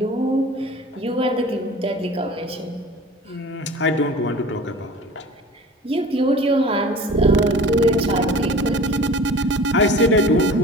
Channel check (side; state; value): both; normal; correlation 0.41